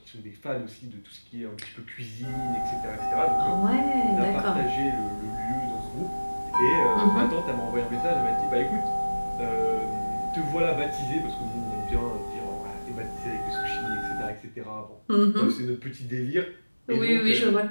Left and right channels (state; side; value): inverted; both; correlation -1.00